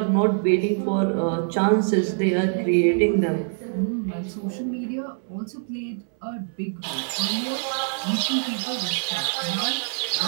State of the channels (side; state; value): left; silent; 62 dB below the other